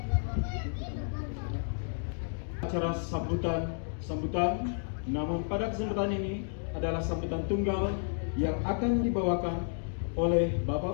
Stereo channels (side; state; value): right; silent; digital silence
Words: Acara sambutan, namun pada kesempatan ini adalah sambutan tunggal yang akan dibawakan oleh